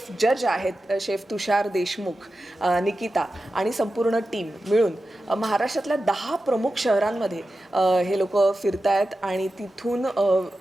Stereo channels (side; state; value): both; normal; correlation 0.92